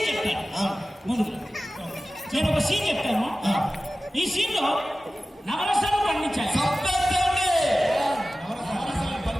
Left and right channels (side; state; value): both; normal; correlation 0.96